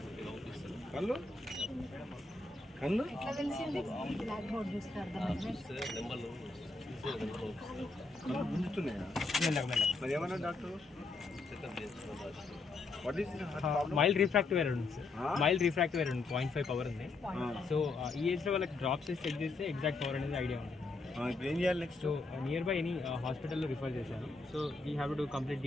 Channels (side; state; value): right; quieter; 3.6 dB